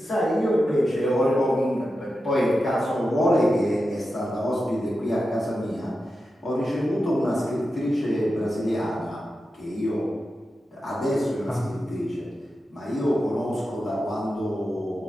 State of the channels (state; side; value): normal; both; correlation 0.90